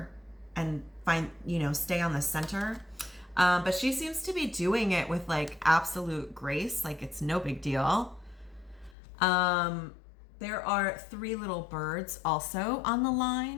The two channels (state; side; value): drops out; right; at 9.0 s